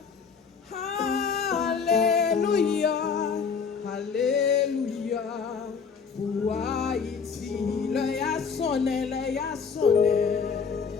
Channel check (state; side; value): quieter; right; 5.9 dB